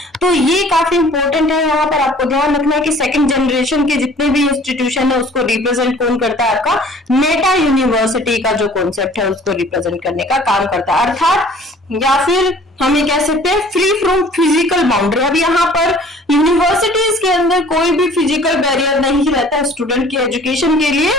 तो ये काफी इंपॉर्टेंट है। यहाँ पर आपको ध्यान रखना है कि सेकेंड जनरेशन के जितने भी इंस्टीट्यूशन है उसको रिप्रेजेंट कौन करता है, आपका मेटा यूनिवर्सिटी का जो कॉन्सेप्ट है उसको रिप्रेजेंट करने का काम करता है। अर्थात या फिर हमें कह सकते हैं फ्री फ्रॉम फिजिकल बाउंड्री। अब यहाँ पर यूनिवर्सिटीज के अंदर कोई भी फिजिकल बैरियर नहीं रहता स्टूडेंट की एजुकेशन के लिए,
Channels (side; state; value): both; normal; correlation 0.51